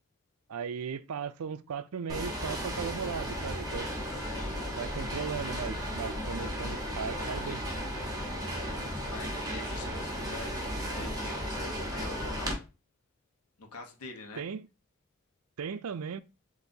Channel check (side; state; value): both; normal; correlation 0.23